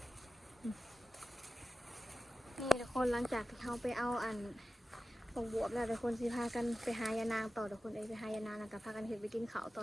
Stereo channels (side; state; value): both; normal; correlation 0.94